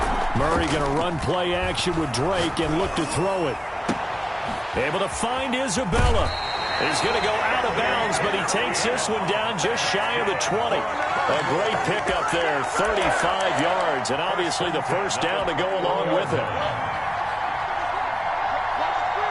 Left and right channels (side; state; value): both; identical; correlation 1.00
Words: Murray going to run play action with Drake and look to throw it. Able to find Isabella. He's going to go out of bounds, but he takes this one down just shy of the 20. A great pickup there, 35 yards, and obviously the first down to go along with it.